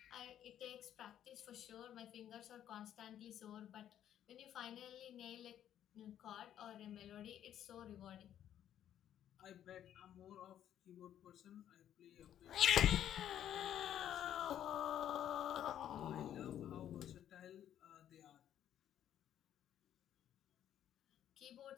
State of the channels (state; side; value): quieter; right; 10.7 dB